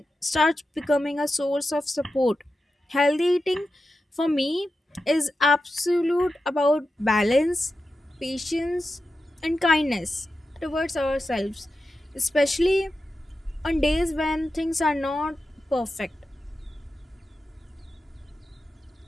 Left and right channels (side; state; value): both; normal; correlation 0.91